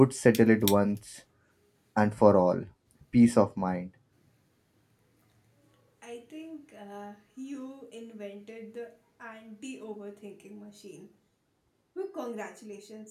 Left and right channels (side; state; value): both; identical; correlation 1.00